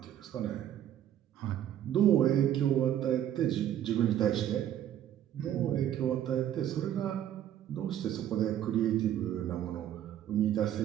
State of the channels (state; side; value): quieter; left; 11.1 dB